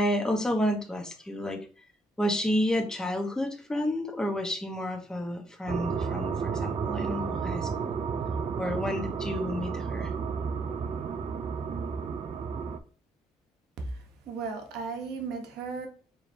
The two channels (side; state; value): both; normal; correlation 0.73